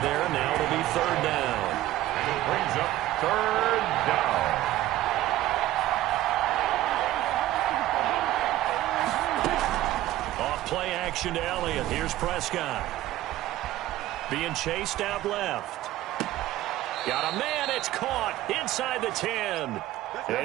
there. Now it'll be 3rd down. And it brings up 3rd down. Off play action to Elliott. Here's Prescott. Being chased out left. Got a man. It's caught inside the 10.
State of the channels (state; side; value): quieter; left; 15.0 dB